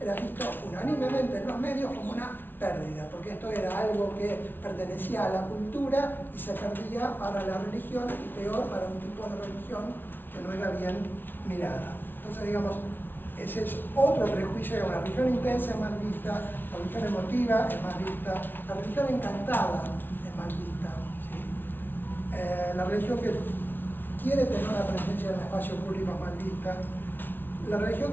unánimemente en los medios como una pérdida, porque esto era algo que pertenecía a la cultura y se perdía para la religión, y peor para un tipo de religión que no era bien mirada. Entonces, digamos, ese es otro prejuicio, la religión intensa es mal vista, la religión emotiva es mal vista, la religión encantada es mal vista, ¿sí? La religión que quiere tener una presencia en el espacio público es mal vista. La religión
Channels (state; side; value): late; right; 0.097 ms